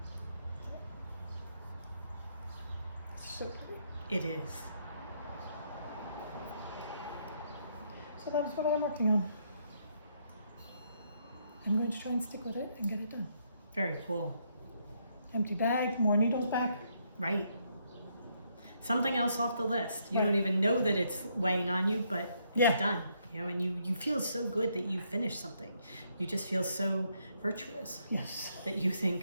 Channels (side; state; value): both; inverted; correlation -0.74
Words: So pretty. It is. So that's what I'm working on. I'm going to try and stick with it and get it done. Very cool. Empty bag, more needles back. Right. Something else off the list. You Right. don't even know that it's weighing on you, but it's Yeah. done. You know, and you feel so good that you finished something. You just feel so virtuous Yes. that you